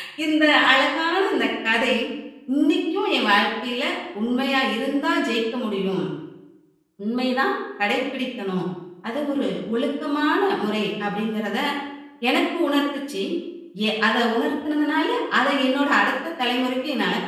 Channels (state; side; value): identical; both; correlation 1.00